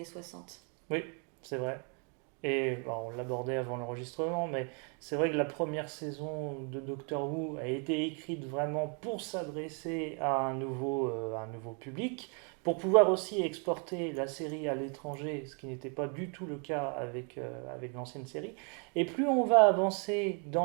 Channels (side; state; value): left; quieter; 38.3 dB